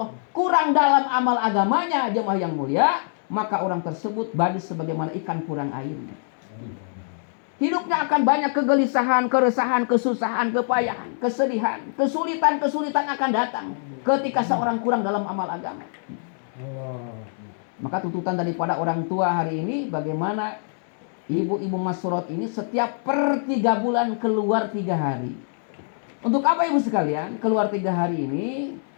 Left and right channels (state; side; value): silent; right; 62 dB below the other